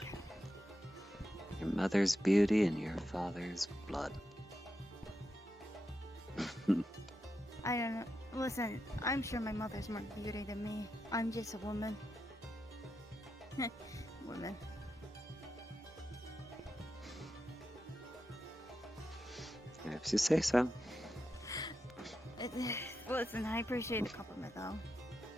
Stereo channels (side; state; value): both; normal; correlation 0.87